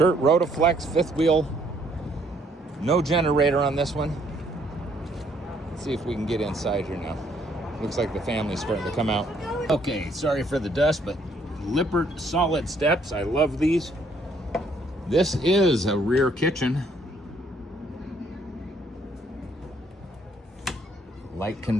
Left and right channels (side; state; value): both; normal; correlation 0.67